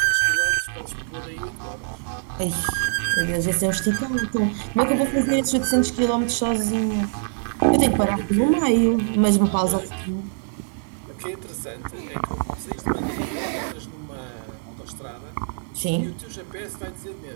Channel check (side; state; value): left; silent; 63 dB below the other